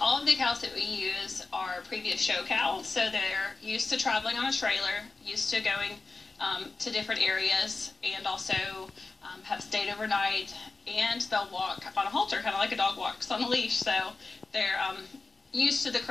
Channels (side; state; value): right; quieter; 3.7 dB